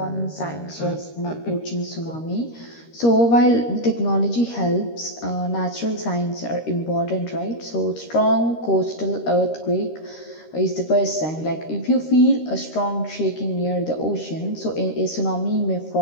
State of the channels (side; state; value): right; late; 13 ms